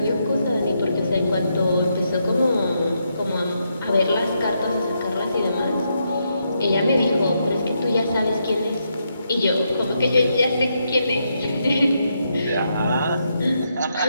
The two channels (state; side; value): inverted; both; correlation -0.80